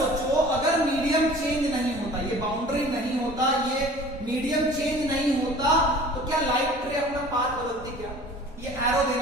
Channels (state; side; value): normal; both; correlation 0.45